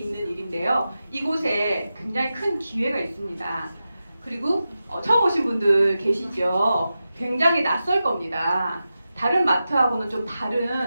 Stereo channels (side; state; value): both; inverted; correlation -0.91